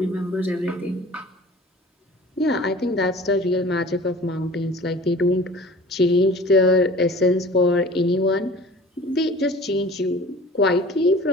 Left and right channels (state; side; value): normal; both; correlation 0.44